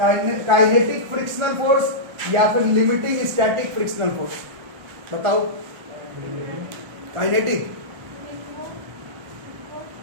फ्रिक्शनल फोर्स या फिर लिमिटिंग स्टैटिक फ्रिक्शनल फोर्स। बताओ, काइनेटिक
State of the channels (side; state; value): left; late; 1.4 ms